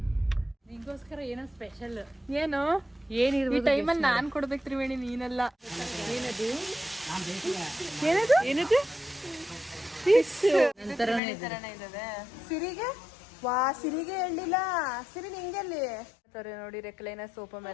ನಿಂಗೋಸ್ಕರ ಏನೋ ಸ್ಪೆಷಲ್. ಏನು ಏನಿರ್ಬೋದು ಈ ಟೈಮಲ್ಲಿ ನಾನ್ ಕೊಡ್ಬೇಕು ತ್ರಿವೇಣಿ, ನೀನೆಲ್ಲ. ಏನದು ಏನದು ಏನದು ಸಿರಿಗೆ ವಾ, ಸಿರಿಗೆ ಹೇಳಿಲ್ಲ. ಸಿರಿ ನಿಂಗೆಲ್ಲಿ ನೋಡಿ ರೆಕ್ಲೈನ ಸೋಪ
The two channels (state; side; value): drops out; right; at 11.2 s